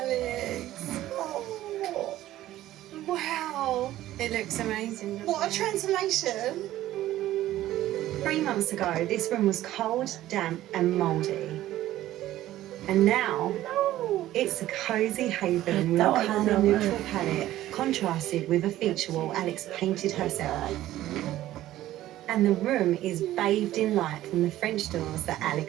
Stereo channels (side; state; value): left; quieter; 14.3 dB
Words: Oh, wow. It looks amazing. What a transformation. 3 months ago, this room was cold, damp, and mouldy. And now, it's a cosy haven with a colour neutral palette, contrasted with a feature wall Alex painted herself. And the room is bathed in light from the French doors that